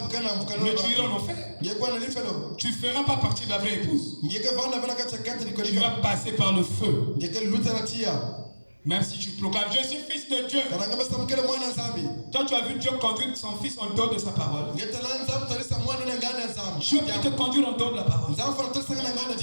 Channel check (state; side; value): inverted; both; correlation -1.00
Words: iras en enfer. Tu ne feras pas partie de la vraie épouse. Tu vas passer par le feu. Même si tu proclames, je suis fils de Dieu. Toi, tu as vu Dieu conduire son fils en dehors de sa parole. Dieu peut te conduire en dehors de la parole.